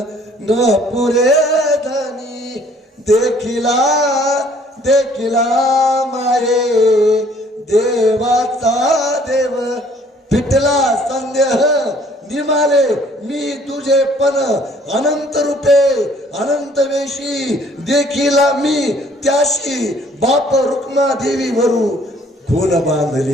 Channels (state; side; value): normal; both; correlation 0.59